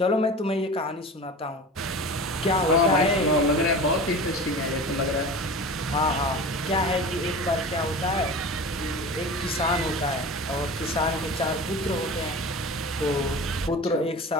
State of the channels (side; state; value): both; normal; correlation 0.34